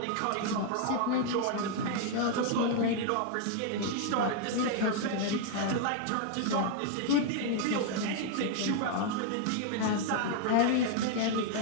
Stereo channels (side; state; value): both; different; correlation 0.00